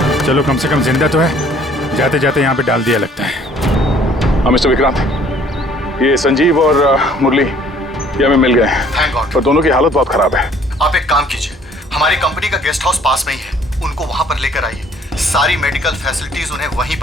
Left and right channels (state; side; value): normal; both; correlation 0.57